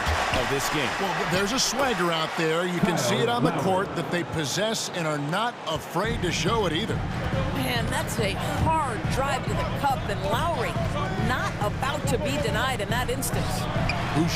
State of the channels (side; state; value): both; identical; correlation 1.00